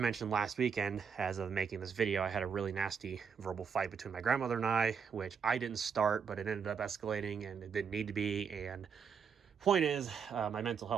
last weekend, as of making this video, I had a really nasty verbal fight between my grandmother and I, which I didn't start, but it ended up escalating and it didn't need to be. And point is, my mental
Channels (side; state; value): left; quieter; 6.6 dB